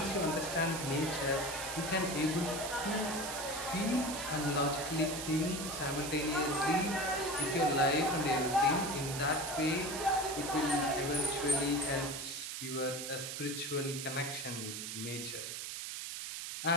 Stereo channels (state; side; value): noise; right; hiss, 6 dB below the sound